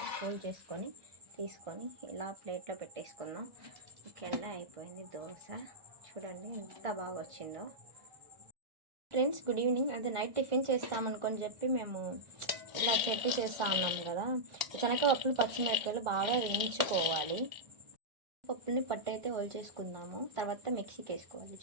ఫోల్డ్ చేసుకొని తీసుకొని ఇలా ప్లేట్లో పెట్టేసుకుందాం. ఓకే అండి, అయిపోయింది దోశ. చూడండి ఎంత బాగా వచ్చిందో. Friends, good evening. అదే నైట్ టిఫిన్ చేస్తామనుకొని చెప్పి మేము ఇలా చట్నీ చేస్తూ ఉన్నాం కదా. శనగపప్పులు పచ్చిమిరపకాయలు బాగా వేయించుకోవాలి. పప్పుల్ని పట్టు అయితే చేసుకుందాము. తర్వాత మిక్సీకి వేసుకోవాలి,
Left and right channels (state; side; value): late; left; 1.3 ms